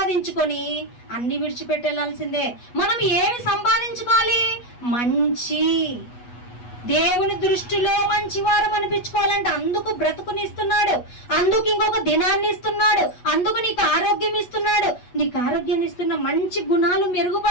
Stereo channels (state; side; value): late; right; 8.3 ms